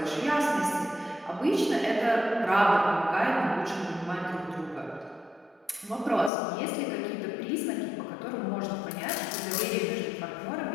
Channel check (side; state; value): right; drops out; at 6.3 s